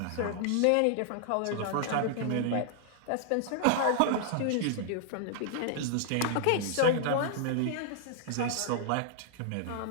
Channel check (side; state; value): both; different; correlation -0.01